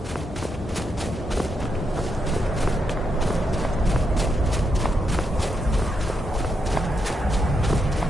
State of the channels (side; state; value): both; normal; correlation 0.82